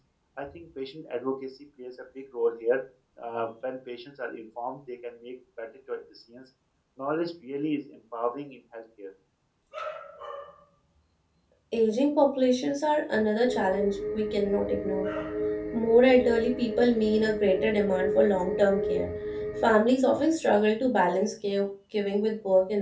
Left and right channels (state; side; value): identical; both; correlation 1.00